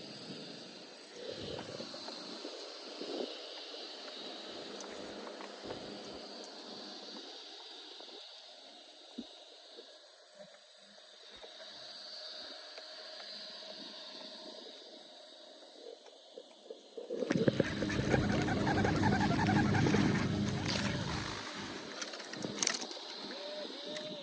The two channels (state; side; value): identical; both; correlation 1.00